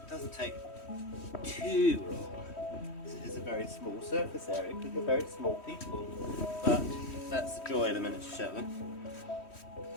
doesn't take too long. It is a very small surface area because we're very small people, but that's the joy of a miniature Shetland.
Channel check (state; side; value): late; right; 3.1 ms